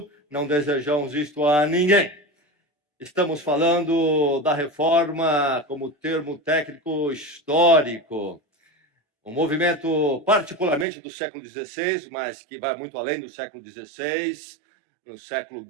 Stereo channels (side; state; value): left; drops out; at 10.9 s